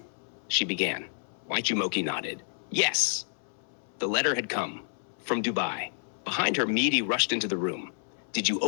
she began. Jumoke nodded. "Yes." The letter had come. From Dubai. Behind her, Midi rushed into the room. "Did you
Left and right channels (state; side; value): silent; right; 58 dB below the other